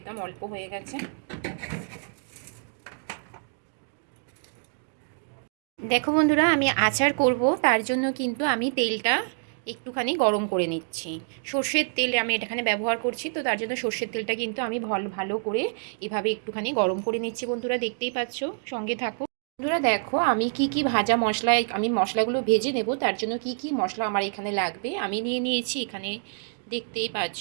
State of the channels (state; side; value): silent; left; digital silence